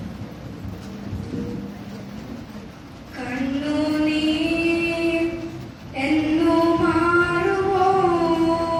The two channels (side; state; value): both; identical; correlation 1.00